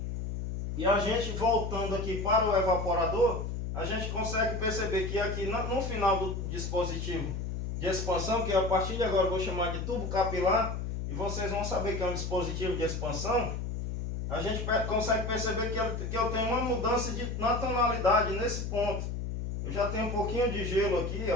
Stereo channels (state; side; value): noise; left; hum, 4 dB below the sound